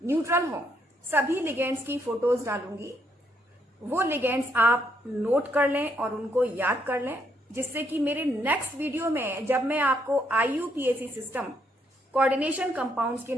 न्यूट्रल हो, सभी लिगेंड्स की फोटोज डालूंगी। वो लिगेंड्स आप नोट कर लें और उनको याद कर लें, जिससे कि मेरे नेक्स्ट वीडियो में जब मैं आपको IUPAC सिस्टम कोऑर्डिनेशन कंपाउंड्स के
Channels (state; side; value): normal; both; correlation 0.73